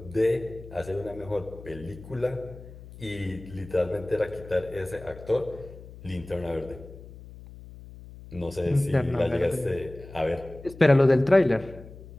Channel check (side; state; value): left; noise; hum, 17 dB below the sound